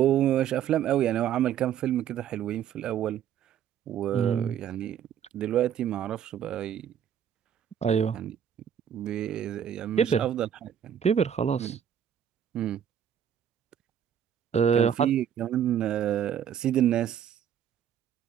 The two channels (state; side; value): quieter; left; 9.1 dB